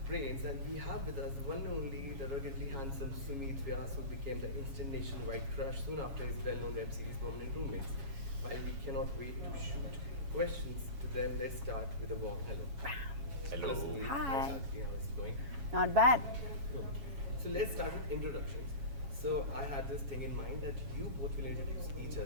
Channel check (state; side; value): late; left; 7.3 ms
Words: brains, and we have with us the one and only, the ruggedly handsome Sumeet Vyas, who became the instant nationwide crush soon after his well-known web series Permanent Roommates. While we cannot wait to shoot questions to them, let's start with a warm hello. Hello. Sumeet, Hi. how's it going? Not bad. So let's start with introductions. So I had this thing in mind that you both will introduce each